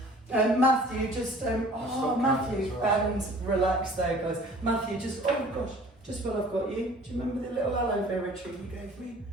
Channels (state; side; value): normal; both; correlation 0.49